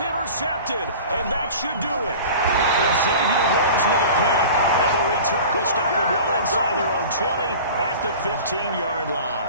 intercepted, and that should do it. And Xavier Woods with a pick. And the return will stop them well inside their own 20 at the 15-yard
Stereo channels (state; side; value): inverted; both; correlation -0.39